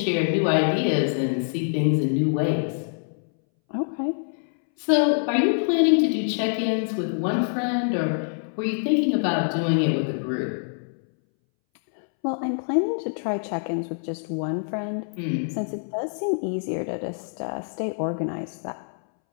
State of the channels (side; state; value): right; silent; 62 dB below the other